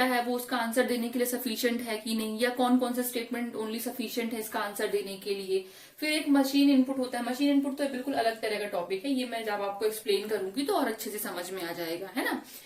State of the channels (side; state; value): both; identical; correlation 1.00